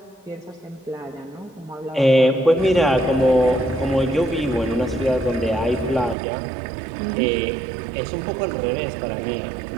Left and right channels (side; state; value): left; drops out; at 6.2 s